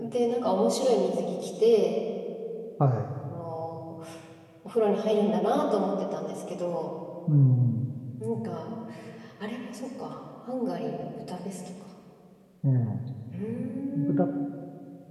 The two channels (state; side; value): identical; both; correlation 1.00